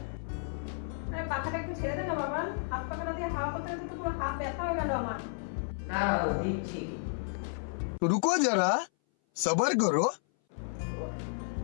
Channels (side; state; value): right; silent; 56 dB below the other